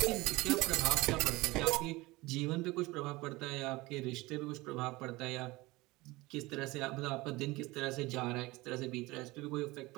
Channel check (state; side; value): quieter; left; 21.3 dB